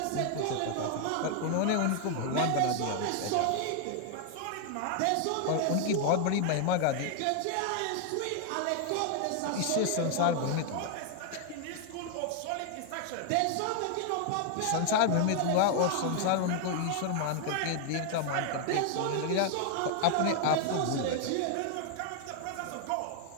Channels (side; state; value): both; different; correlation 0.00